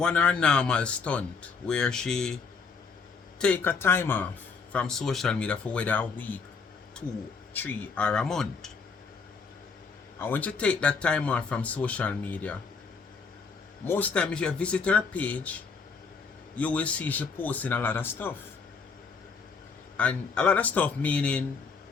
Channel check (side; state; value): right; quieter; 5.1 dB